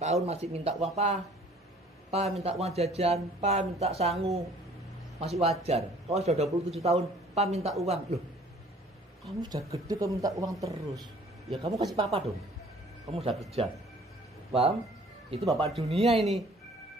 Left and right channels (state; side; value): normal; both; correlation 0.54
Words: masih minta uang, Pak minta uang jajan, Pak minta sangu, masih wajar. Kalau sudah 27 tahun, Pak minta uang. Loh, kamu sudah gede kamu minta uang terus. Ya kamu kasih papa dong. Kamu sudah kerja. Paham? Itu bapak dunia ini.